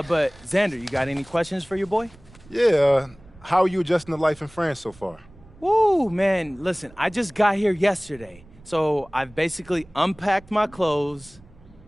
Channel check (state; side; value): noise; right; rumble, 24 dB below the sound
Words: Xander, you got any questions for your boy? Yeah, how are you adjusting to life in France so far? Woo, man, listen, I just got here yesterday, so I've basically unpacked my clothes,